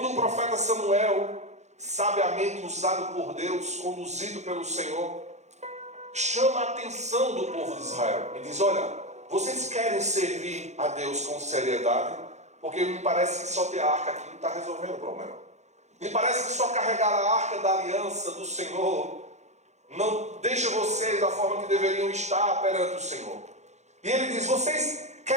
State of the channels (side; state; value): left; late; 0.33 ms